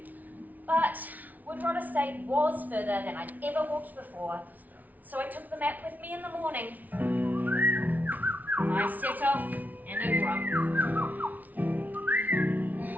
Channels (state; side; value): late; left; 0.077 ms